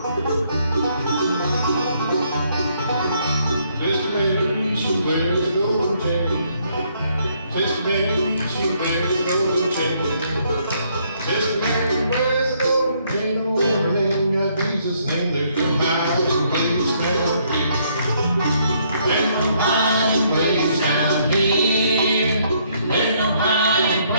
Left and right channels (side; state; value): both; inverted; correlation -0.69